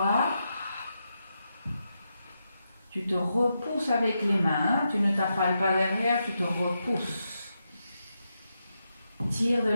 Tu te repousses avec les mains, tu ne t'affales pas derrière, tu te repousses. Tire de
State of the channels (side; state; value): both; inverted; correlation -0.85